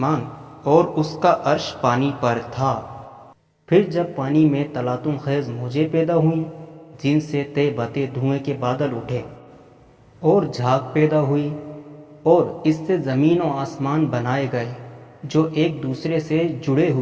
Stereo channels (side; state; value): both; identical; correlation 1.00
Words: اور اس کا عرش پانی پر تھا۔ پھر جب پانی میں تلاطم خیز موجیں پیدا ہوئیں جن سے تے بتے دھوئیں کے بادل اٹھے اور جھاگ پیدا ہوئی، اور اس سے زمین و آسمان بنائے گئے جو ایک دوسرے سے جڑے